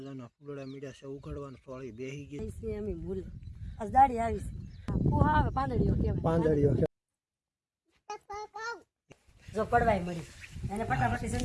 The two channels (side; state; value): both; identical; correlation 1.00